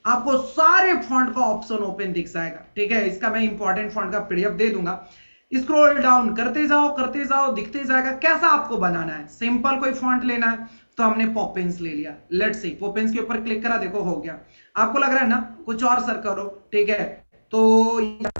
आपको सारे फॉन्ट का ऑप्शन ओपन दिख जाएगा, ठीक है। इसका मैं इंपॉर्टेंट फॉन्ट का पीडीएफ दे दूंगा। स्क्रॉल डाउन करते जाओ, दिखते जाएगा। कैसा आपको बनाना है, सिंपल कोई फॉन्ट लेना है तो हमने पॉपिंस ले लिया। लेट्स सी, पॉपिंस के ऊपर क्लिक करा, देखो हो गया। आपको लग रहा है ना कुछ और सर करो, ठीक है, तो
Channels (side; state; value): both; inverted; correlation -1.00